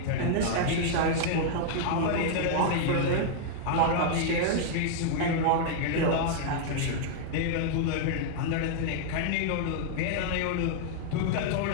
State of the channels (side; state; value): both; different; correlation -0.01